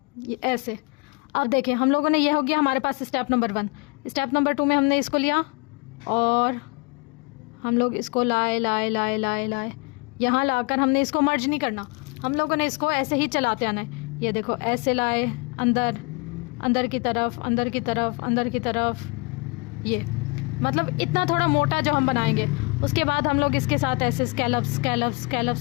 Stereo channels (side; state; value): right; quieter; 29.1 dB